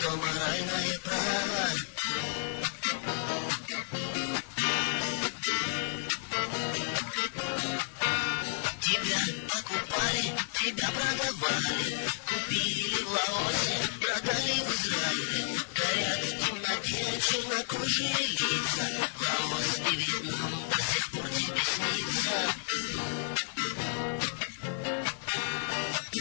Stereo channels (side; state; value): right; silent; digital silence